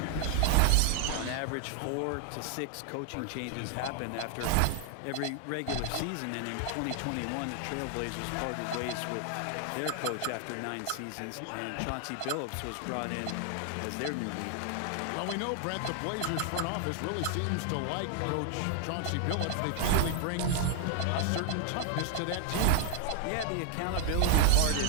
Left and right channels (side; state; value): both; different; correlation 0.00